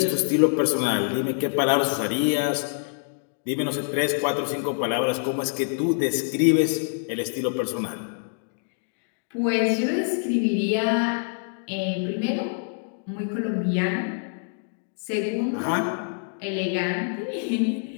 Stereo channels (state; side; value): silent; right; digital silence